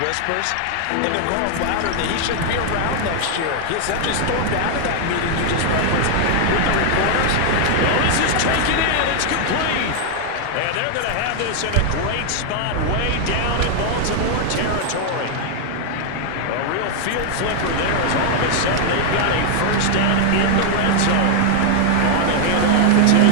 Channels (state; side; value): different; both; correlation 0.00